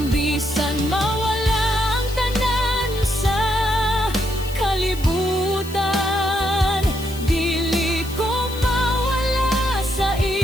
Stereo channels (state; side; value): noise; left; hiss, 15 dB below the sound